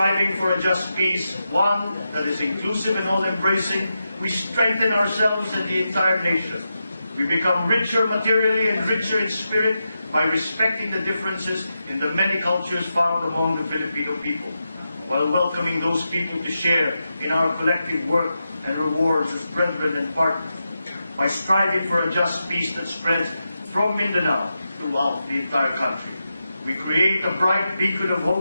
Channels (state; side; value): inverted; both; correlation -0.88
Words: for a just peace, one that is inclusive and all-embracing, we strengthen ourselves and the entire nation. We become richer materially and richer in spirit by respecting the differences in the many cultures found among the Filipino people, while welcoming those people to share in our collective work and rewards as brethren and partners. By striving for a just peace that spreads from Mindanao throughout the entire country, we create a bright beacon of